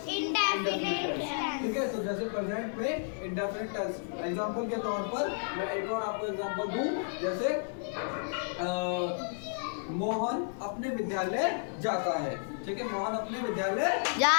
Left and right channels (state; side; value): silent; right; 56 dB below the other